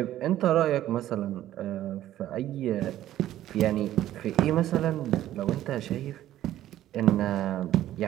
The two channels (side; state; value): left; quieter; 13.2 dB